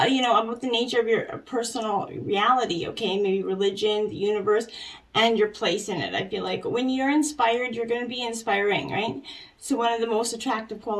you know, about the nature of your personal reality, okay? Maybe religion, the universe, and your place in it. I feel like when you're inspired, you're going to be inspiring, right? So one of the most attractive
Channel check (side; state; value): both; identical; correlation 1.00